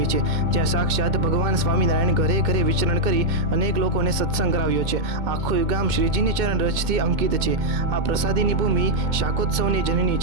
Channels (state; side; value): late; left; 2.2 ms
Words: છે, જ્યાં સાક્ષાત ભગવાન સ્વામિનારાયણ ઘરે ઘરે વિચરણ કરી અનેક લોકોને સત્સંગ કરાવ્યો છે. આખું ગામ શ્રીજીની ચરણ રજથી અંકિત છે. આ પ્રસાદીની ભૂમિ શાકોત્સવની જનની